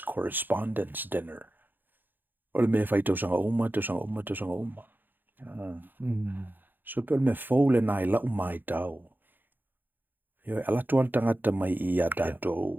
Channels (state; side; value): late; left; 0.090 ms